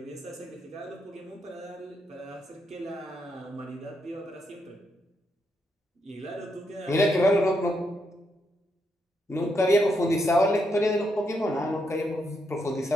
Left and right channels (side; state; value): both; normal; correlation 0.80